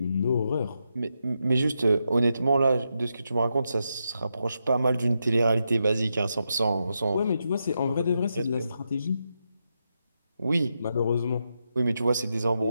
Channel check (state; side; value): inverted; both; correlation -0.85